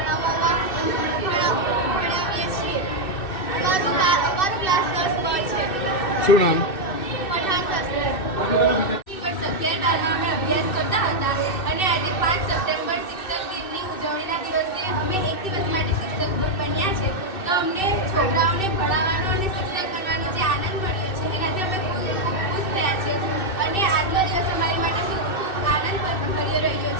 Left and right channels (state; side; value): late; right; 2.6 ms